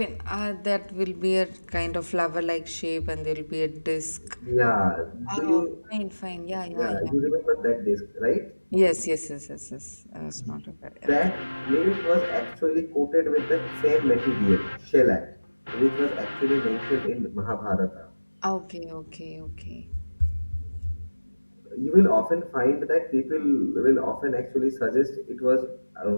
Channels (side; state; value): both; inverted; correlation -1.00